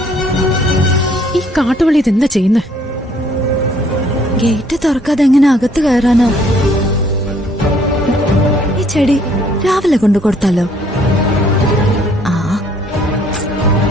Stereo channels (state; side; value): normal; both; correlation 0.63